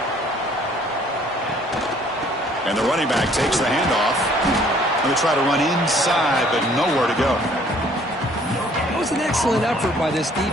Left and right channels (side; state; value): both; normal; correlation 0.59